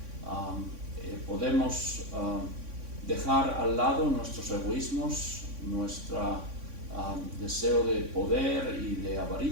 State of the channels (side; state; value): left; late; 3.6 ms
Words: podemos dejar al lado nuestros egoísmos, nuestro deseo de poder y de